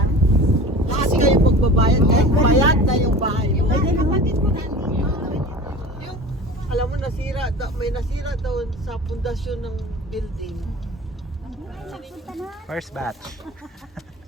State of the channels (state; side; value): normal; both; correlation 0.37